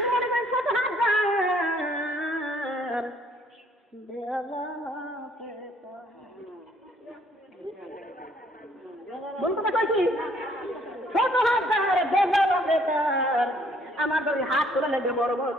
মনে করি ছোট হাত বলতে কইছি ছোট হাত আমার যদি হাত তুলে নেবে বড় বড়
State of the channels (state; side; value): normal; both; correlation 0.63